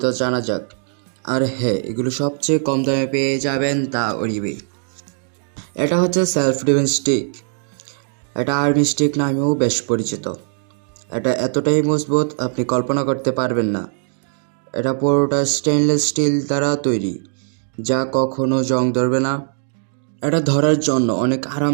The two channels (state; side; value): silent; left; digital silence